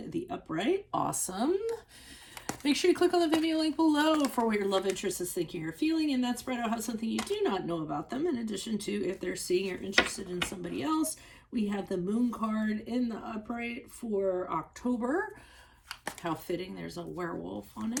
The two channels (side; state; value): both; identical; correlation 1.00